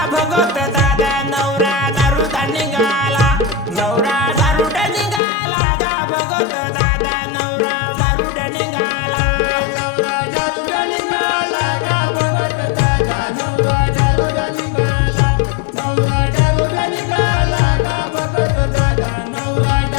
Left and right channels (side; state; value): right; drops out; at 5.2 s